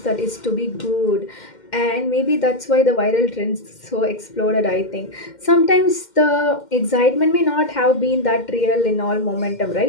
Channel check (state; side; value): late; right; 2.1 ms